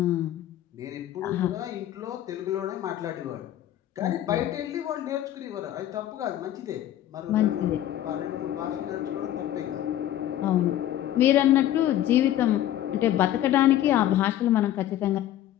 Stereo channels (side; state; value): right; quieter; 12.5 dB